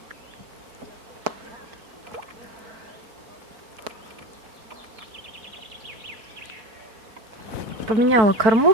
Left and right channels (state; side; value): late; left; 4.6 ms